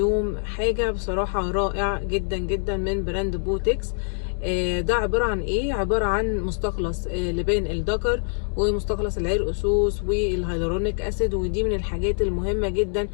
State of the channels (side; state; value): right; silent; 62 dB below the other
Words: حاجه بصراحه رائع جدا جدا من براند بوتكس. ده عباره عن ايه؟ عباره عن مستخلص لبان الذكر ومستخلص العرقسوس والهيالورونيك اسيد، ودي من الحاجات المهمه جدا